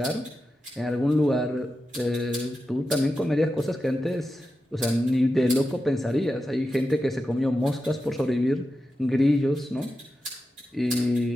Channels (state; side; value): normal; both; correlation 0.90